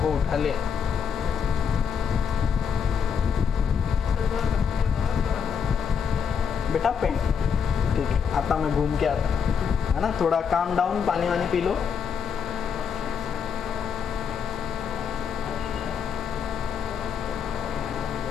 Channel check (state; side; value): quieter; right; 6.8 dB